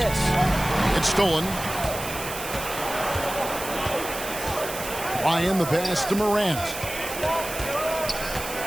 It's stolen. Ryan the pass to Morant.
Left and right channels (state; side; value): noise; right; hiss, 9 dB below the sound